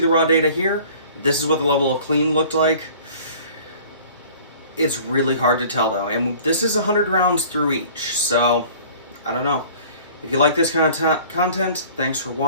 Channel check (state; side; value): inverted; both; correlation -0.48